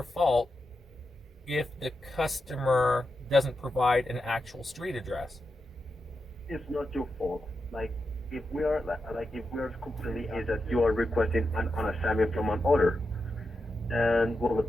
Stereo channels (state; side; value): normal; both; correlation 0.88